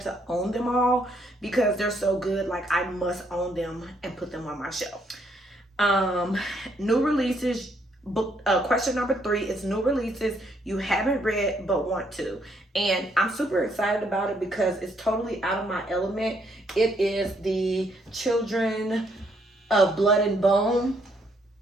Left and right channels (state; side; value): normal; both; correlation 0.71